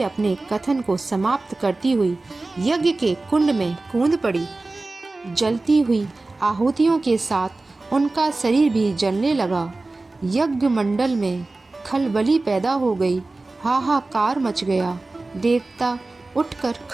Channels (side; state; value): left; quieter; 3.2 dB